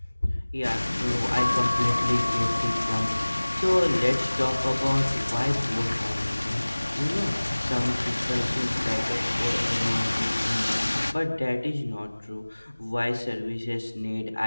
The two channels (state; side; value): inverted; both; correlation -1.00